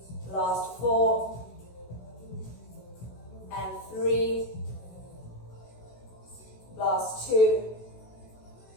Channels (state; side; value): late; right; 16 ms